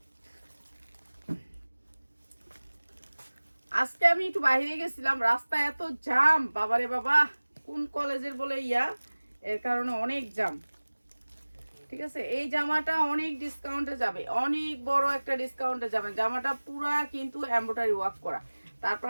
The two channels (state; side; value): inverted; both; correlation -1.00